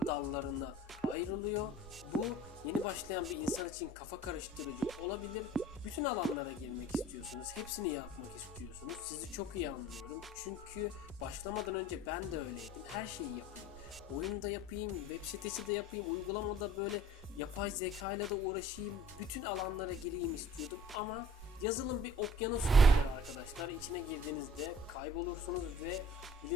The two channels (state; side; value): normal; both; correlation 0.48